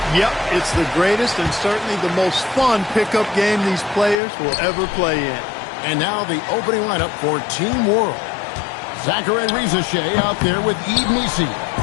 Yep, it's the greatest and certainly the most fun pickup game these players will ever play in. And now the opening lineup for Team World. Zachary Rizachet out there with Yves Missi.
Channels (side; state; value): right; drops out; at 4.2 s